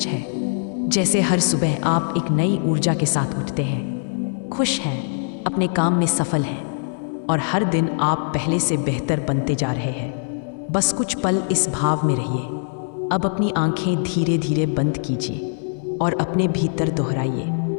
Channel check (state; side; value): silent; right; 61 dB below the other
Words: है। जैसे हर सुबह आप एक नई ऊर्जा के साथ उठते हैं, खुश हैं, अपने काम में सफल हैं और हर दिन आप पहले से बेहतर बनते जा रहे हैं। बस कुछ पल इस भाव में रहिए। अब अपनी आंखें धीरे धीरे बंद कीजिए और अपने भीतर दोहराइए,